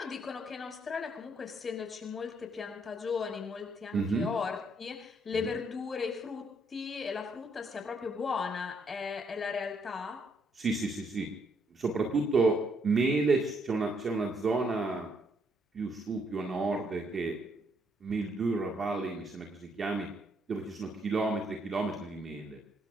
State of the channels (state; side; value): normal; both; correlation 0.72